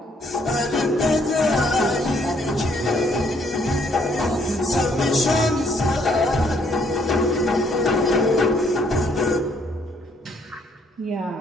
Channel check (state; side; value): normal; both; correlation 0.67